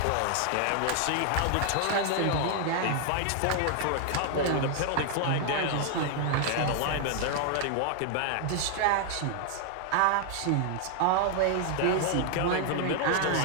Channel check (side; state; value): both; different; correlation 0.00